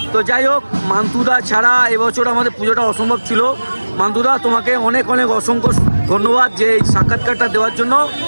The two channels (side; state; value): both; inverted; correlation -1.00